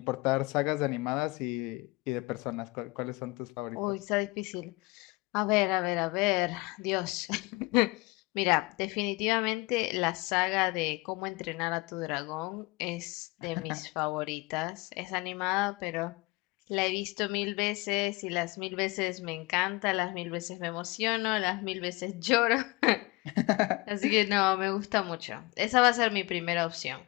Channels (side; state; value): right; quieter; 23.5 dB